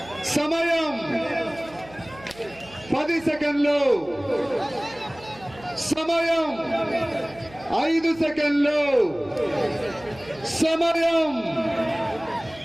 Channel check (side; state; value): right; noise; hum, 21 dB below the sound